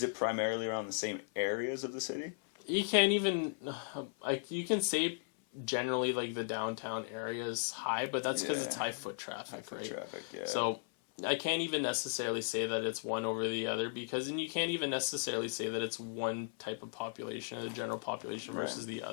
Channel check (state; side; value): silent; right; 53 dB below the other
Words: it primarily around the same areas of the city? You can't even, you can say generally like the downtown area is high, but that's because it's high foot traffic, right? So I can't even necessarily say that it's one over the other, because and you can't even necessarily say that it's one type of population, the general population versus the